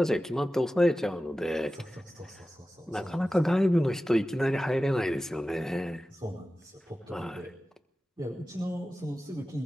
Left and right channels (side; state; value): both; normal; correlation 0.95